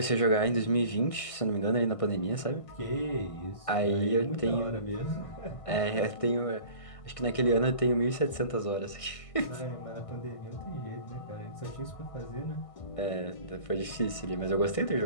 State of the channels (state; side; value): late; right; 1.5 ms